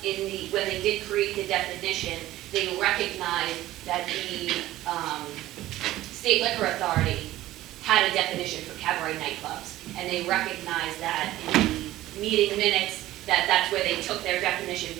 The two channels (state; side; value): quieter; left; 15.5 dB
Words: when they did create the definition, they recognized that the State Liquor Authority had a definition for cabaret nightclubs, and they recognized that in the meeting minutes that's where they took their definition